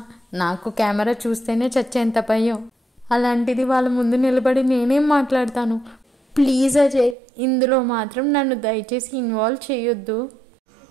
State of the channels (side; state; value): left; drops out; at 7.2 s